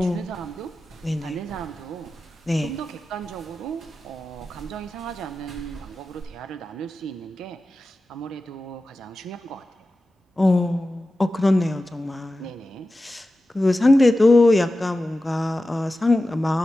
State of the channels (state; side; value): normal; both; correlation 0.93